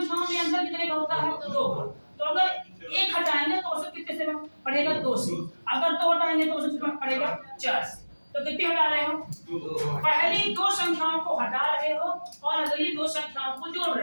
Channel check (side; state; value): both; inverted; correlation -1.00